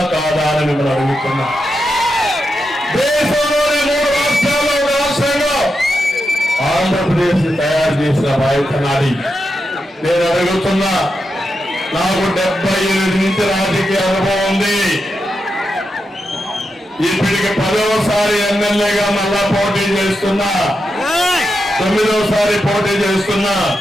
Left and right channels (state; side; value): normal; both; correlation 0.87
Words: కాదా అని మిమ్మల్ని అడుగుతున్నా. దేశంలోని 3 రాష్ట్రాల్లో ఒక రాష్ట్రంలో ఆంధ్రప్రదేశ్ తయారు చేసిన బాధ్యత నాది. నేను అడుగుతున్నా, నాకు 78 నుంచి రాజకీయ అనుభవం ఉంది. ఇప్పటికి 10వసారి ఎమ్మెల్యేగా మళ్ళా పోటీ చేస్తున్నా, 9వసారి పోటీ చేస్తున్నా.